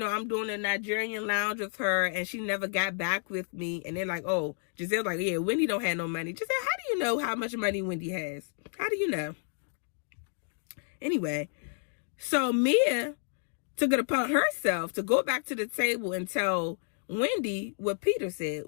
doing a Nigerian lounge with her, and she never got back with me. And they're like, oh, Giselle's like, yeah, Wendy don't have no money. Giselle, how do you know how much money Wendy has? How do you know? Anyway, so Mia took it upon herself to go back to the table and tell Wendy what Peter said.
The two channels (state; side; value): silent; right; 57 dB below the other